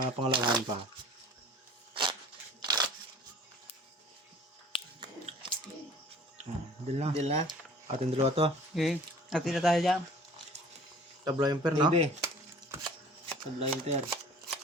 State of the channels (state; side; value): normal; both; correlation 0.47